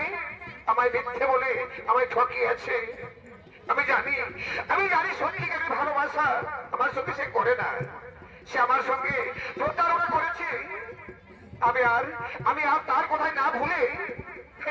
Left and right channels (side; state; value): both; identical; correlation 1.00